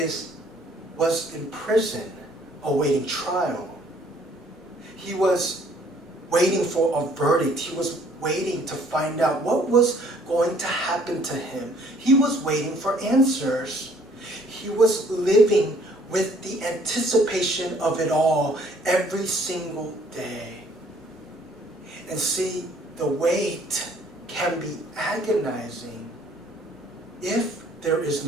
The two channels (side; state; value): both; normal; correlation 0.60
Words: was in prison awaiting trial. He was waiting for a verdict. He was waiting to find out what was going to happen to him. He was waiting for answers. He was living with the anticipation of it all every single day. And see, the wait can be agonizing if there is